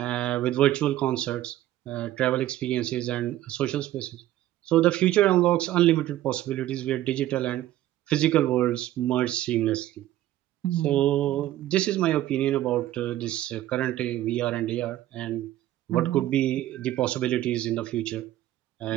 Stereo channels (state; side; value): quieter; left; 14.0 dB